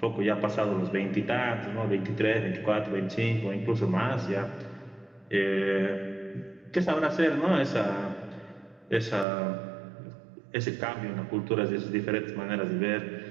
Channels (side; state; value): left; drops out; at 9.2 s